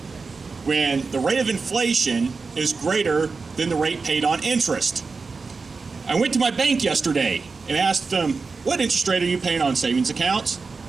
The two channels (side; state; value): left; quieter; 4.4 dB